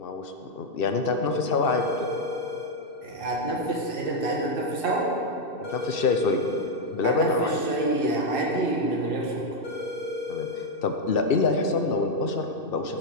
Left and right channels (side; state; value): right; late; 2.6 ms